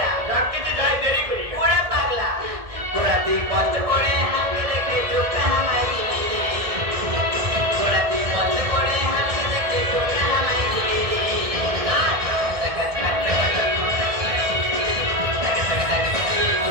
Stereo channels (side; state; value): left; late; 1.7 ms